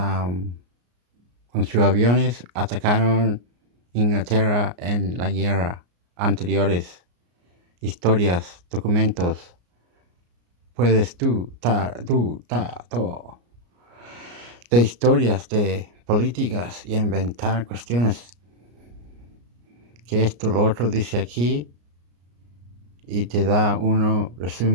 con sus aviones atacaron Inglaterra en la guerra anteriores. Historias, documentos. Puedes todo. De historias, de políticas y inventar cuestiones. Que esto, lo otro dice aquí. Y te da uno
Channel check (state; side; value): late; left; 34 ms